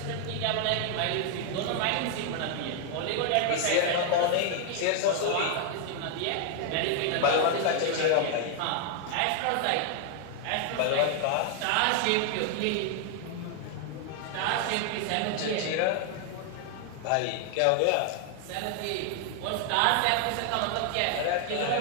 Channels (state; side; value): different; both; correlation 0.00